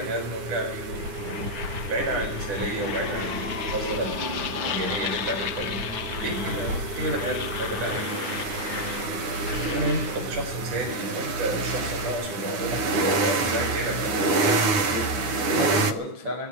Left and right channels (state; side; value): late; left; 9.8 ms